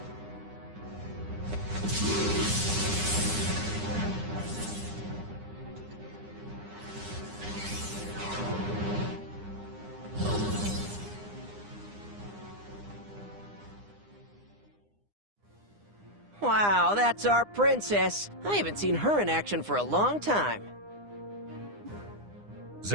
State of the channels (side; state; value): left; late; 9.8 ms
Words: Wow, that's our princess. I haven't seen her in action for a long time.